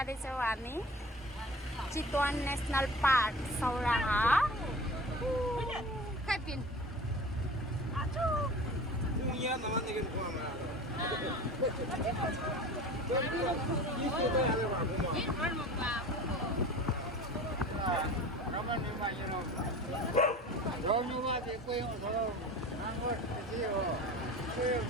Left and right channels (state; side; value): normal; both; correlation 0.38